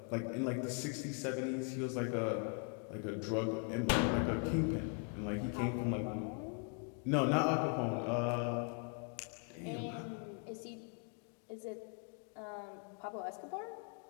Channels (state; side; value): quieter; right; 39.1 dB